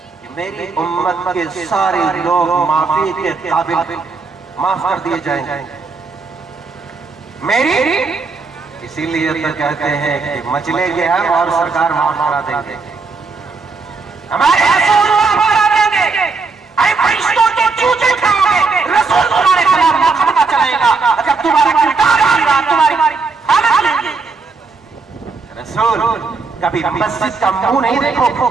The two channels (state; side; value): quieter; left; 4.3 dB